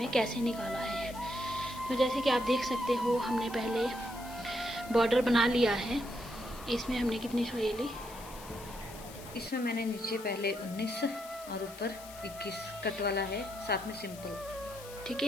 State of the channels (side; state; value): left; noise; hiss, 16 dB below the sound